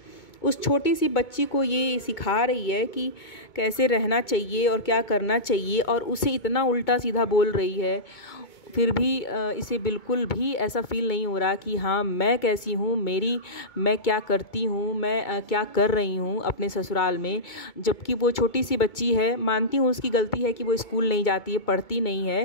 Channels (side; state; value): right; late; 2.2 ms